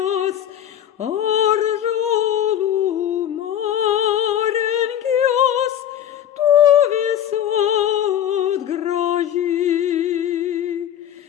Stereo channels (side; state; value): right; quieter; 10.3 dB